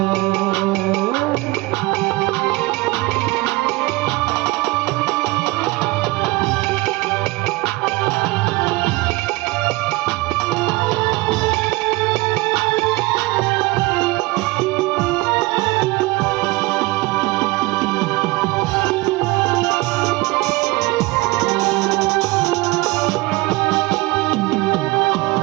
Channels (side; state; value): left; quieter; 21.9 dB